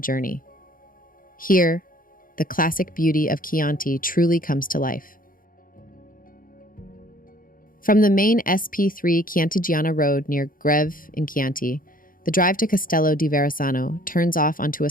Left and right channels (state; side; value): late; right; 0.40 ms